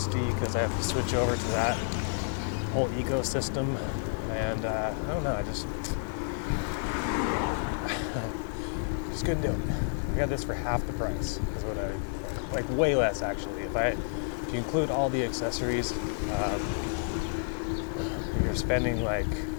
because I have to switch over to that whole ecosystem, and I don't know, I just couldn't do it. I got this for half the price is what I like, way less actually. If you include all the accessories, you're spending like,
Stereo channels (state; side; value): silent; right; 57 dB below the other